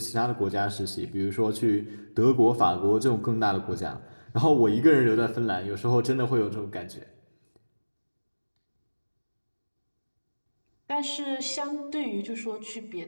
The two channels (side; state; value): both; inverted; correlation -1.00